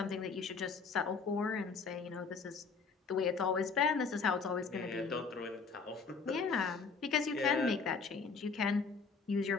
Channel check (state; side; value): quieter; right; 5.0 dB